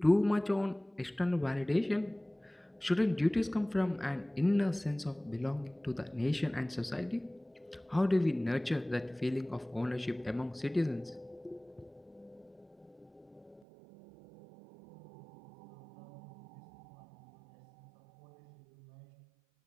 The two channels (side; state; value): left; drops out; at 13.7 s